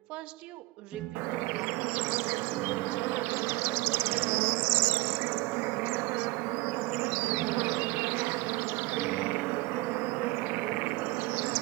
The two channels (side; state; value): left; quieter; 21.9 dB